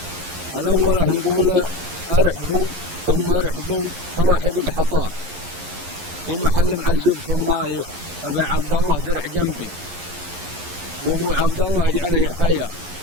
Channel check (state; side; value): late; left; 11 ms